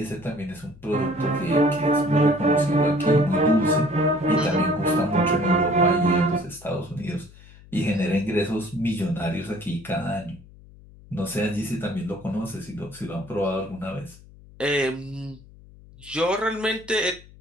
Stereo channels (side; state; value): left; noise; hum, 22 dB below the sound